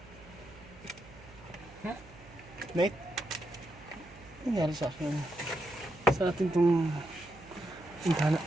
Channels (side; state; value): right; noise; hum, 20 dB below the sound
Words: Nate? Ano nangyari sa akin? Sa atin itong intana.